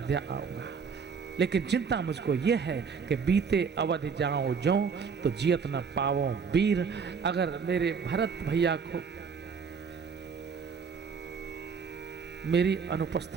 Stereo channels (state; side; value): quieter; left; 5.9 dB